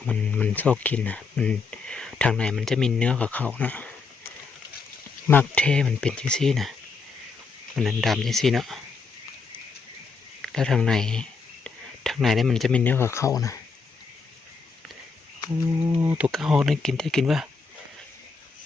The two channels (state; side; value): quieter; right; 4.7 dB